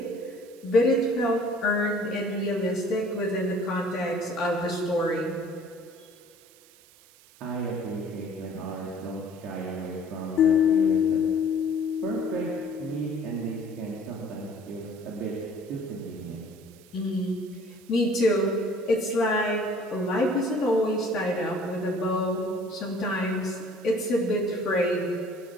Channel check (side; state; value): right; noise; hiss, 26 dB below the sound